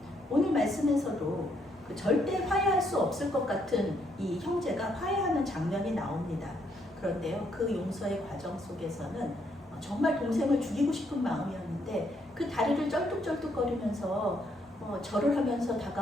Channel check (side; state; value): both; normal; correlation 0.73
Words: 오늘 말씀에서도 절대 화해할 수 없을 것 같은 이 형제가 화해하는 장면이 나옵니다. 그런데요, 그 용서의 과정 속에서는 정말 동생을 죽이고 싶은 마음이었는데 그 다리를 쩔뚝쩔뚝거리면서 절을 하면서